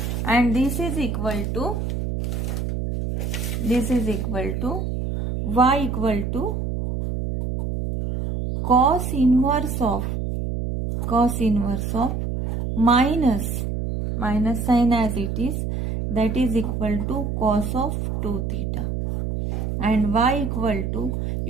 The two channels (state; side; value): noise; right; hum, 2 dB below the sound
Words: and this is equal to y equal to cos inverse of minus sign as it is, that is equal to cos of 2 theta, and y equal to,